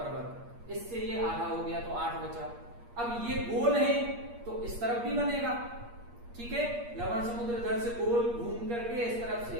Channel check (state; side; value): late; left; 8.5 ms